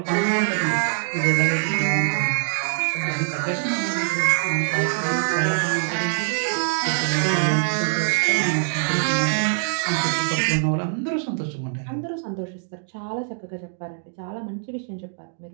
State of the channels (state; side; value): silent; left; digital silence